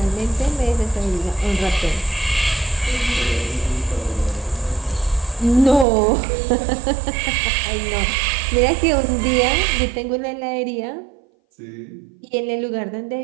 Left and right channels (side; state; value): left; drops out; at 5.9 s